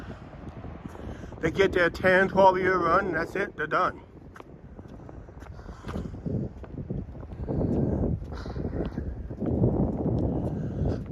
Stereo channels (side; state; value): both; identical; correlation 1.00